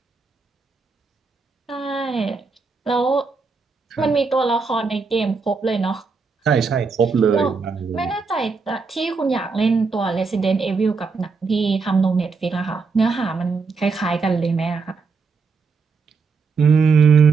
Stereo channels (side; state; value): left; quieter; 4.7 dB